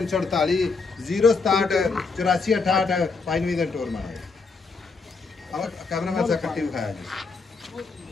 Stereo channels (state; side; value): quieter; right; 4.4 dB